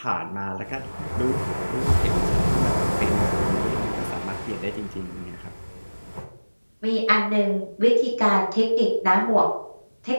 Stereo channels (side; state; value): both; inverted; correlation -1.00